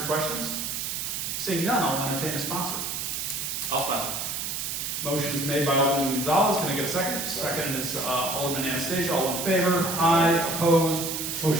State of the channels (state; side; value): noise; right; hiss, 3 dB below the sound